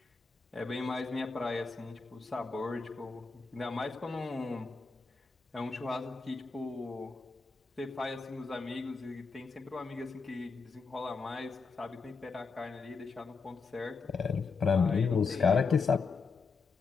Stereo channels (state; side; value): quieter; right; 4.7 dB